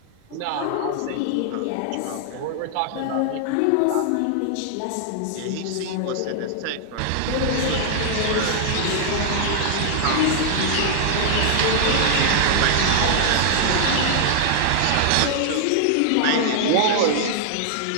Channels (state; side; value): different; both; correlation -0.01